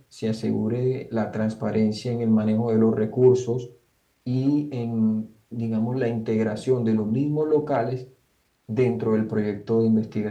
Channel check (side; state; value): both; identical; correlation 1.00